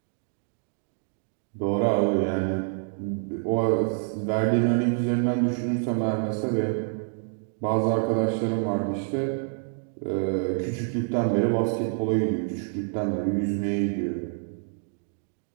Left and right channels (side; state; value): left; silent; 59 dB below the other